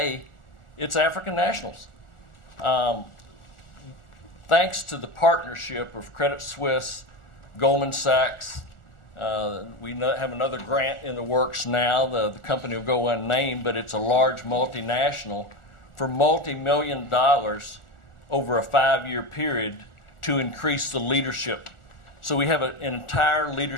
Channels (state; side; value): late; right; 1.4 ms